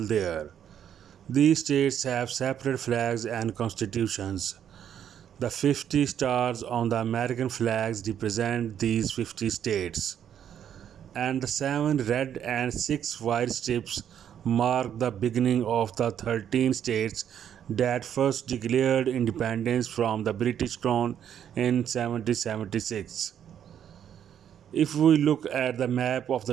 there. These states have separate flags and constitutions. The 50 stars on the American flags represent these 50 states, and the 7 red and 6 white strips mark the beginning of the 13 states that first declared independence from the British Crown in 1776. If we look at the map of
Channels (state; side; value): quieter; left; 9.3 dB